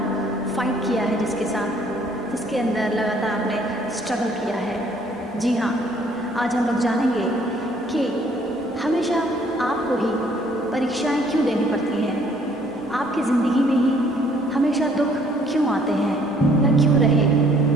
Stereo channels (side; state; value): both; normal; correlation 0.62